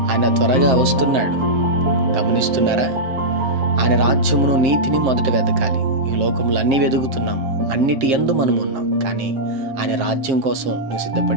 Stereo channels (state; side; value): late; left; 7.7 ms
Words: ఆయన త్వరగా వస్తున్నాడు. గమనిస్తున్నారా? ఆయన రాజ్యమును నీతిని మొదట వెతకాలి. ఈ లోకంలో అన్నీ వెతుకుతున్నాము, అన్నిటి యందు మనం ఉన్నాం. కానీ ఆయన రాజ్యం కోసం నువ్వు